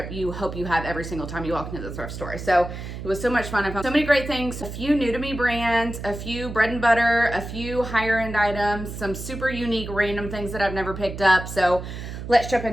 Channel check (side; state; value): right; noise; hum, 9 dB below the sound